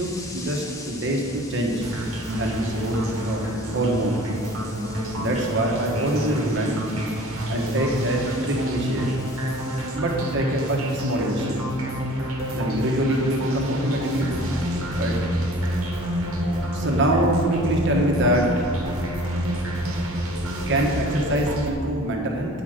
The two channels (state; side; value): normal; both; correlation 0.47